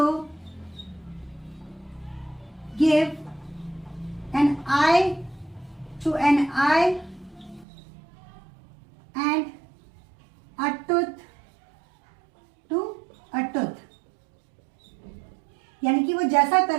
give an eye to an eye and a tooth to a tooth। यानी कि वो जैसा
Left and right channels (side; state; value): left; drops out; at 7.7 s